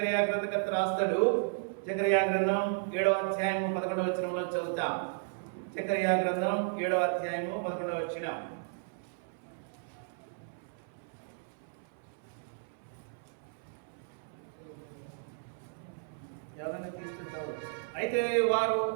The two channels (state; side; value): silent; left; 55 dB below the other